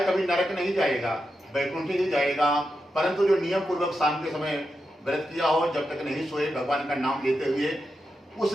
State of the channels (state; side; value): normal; both; correlation 0.87